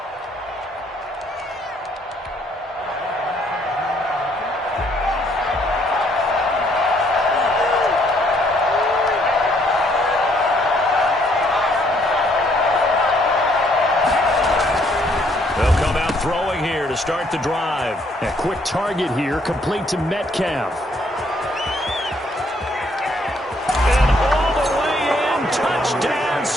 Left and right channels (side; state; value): both; normal; correlation 0.67